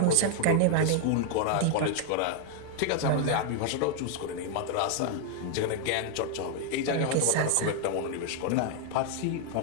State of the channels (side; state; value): both; different; correlation 0.00